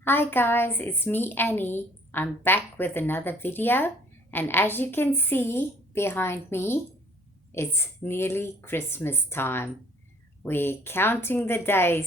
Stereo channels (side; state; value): both; normal; correlation 0.57